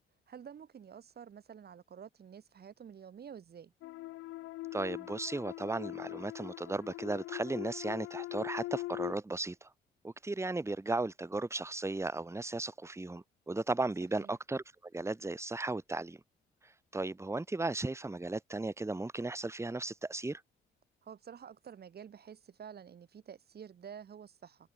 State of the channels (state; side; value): normal; both; correlation 0.69